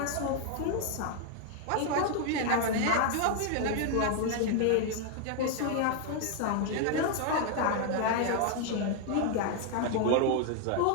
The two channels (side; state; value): both; different; correlation 0.00